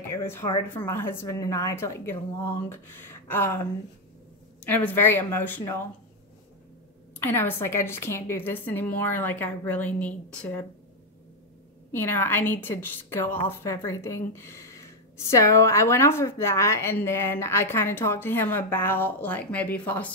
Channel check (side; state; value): both; normal; correlation 0.03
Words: it was hard for my husband and I to like get along. And it was very emotional. And I was like, I just can't do this anymore. Like I really need to, you know, I need to just go off everything. So I went off of that, and then I kind of talked to him about like maybe